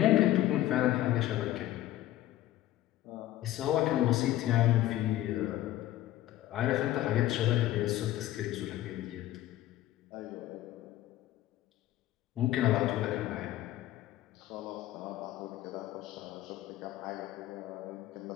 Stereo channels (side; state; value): right; quieter; 14.4 dB